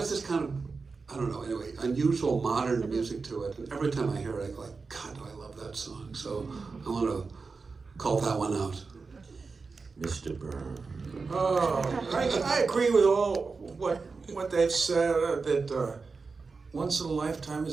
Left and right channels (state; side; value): quieter; left; 4.5 dB